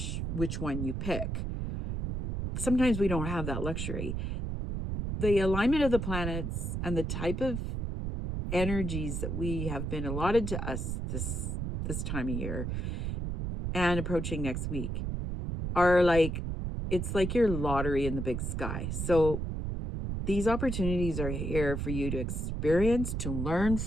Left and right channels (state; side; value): noise; right; rumble, 3 dB below the sound